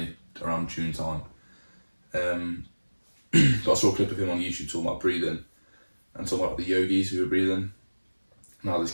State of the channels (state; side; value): inverted; both; correlation -1.00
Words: around June time. But I saw a clip of him on YouTube talking about breathing and talking about the yogis who were breathing. Now this